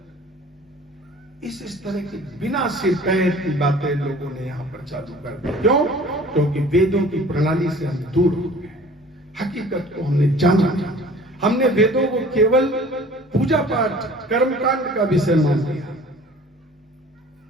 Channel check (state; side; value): normal; both; correlation 0.48